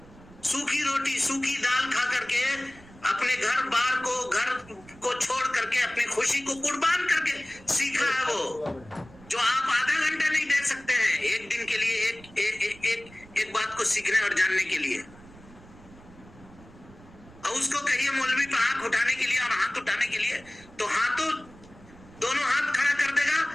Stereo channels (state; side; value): noise; right; rumble, 22 dB below the sound